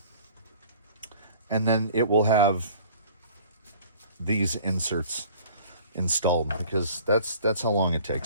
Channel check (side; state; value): both; inverted; correlation -0.48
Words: And then it will have these inserts installed, because that's how long it